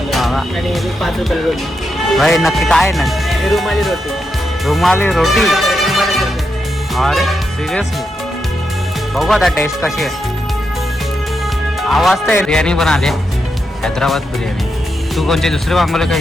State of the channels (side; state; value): both; normal; correlation 0.84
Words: हा का? आणि 5 रुपयाला रोटी. भाई नक्की काय ना? ही रुमाली रोटी. रुमाली रोटी. रुमाली रोटी. अरे सिरियसली बघू आता टेस्ट कशी आहे. आवाज तर बिर्याणी पण आली हैदराबाद बिर्याणी. तू कोणची दुसरी मागवले का